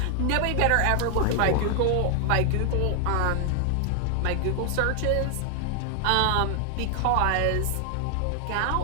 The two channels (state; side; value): different; both; correlation 0.00